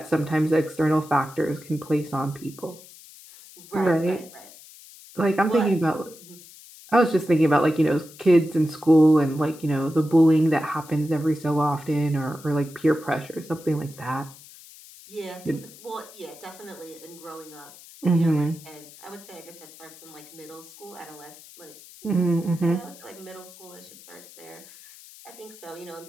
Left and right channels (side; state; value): left; noise; hiss, 20 dB below the sound